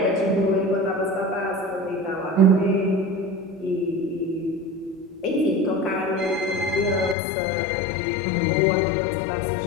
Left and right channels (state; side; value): drops out; right; at 7.2 s